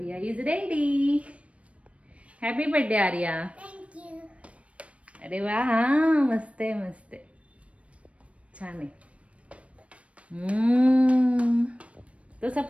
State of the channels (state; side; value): late; left; 0.063 ms